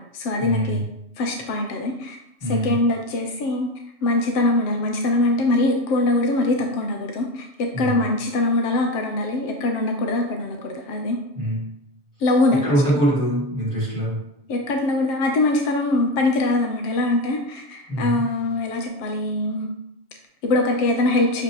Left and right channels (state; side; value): late; right; 7.3 ms